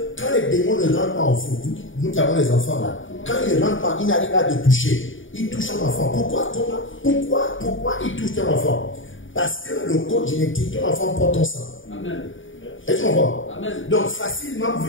quand les démons ne rentrent pas en fou, nous qui avons les enfants là, quand ils ne rentrent pas, ils n'arrivent pas à te toucher. Ils touchent ton enfant. Pourquoi ils touchent ton enfant? Parce que le code génétique, ton enfant porte ton sang. Amen. Est-ce que tu comprends? Donc facilement,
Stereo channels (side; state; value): right; late; 0.57 ms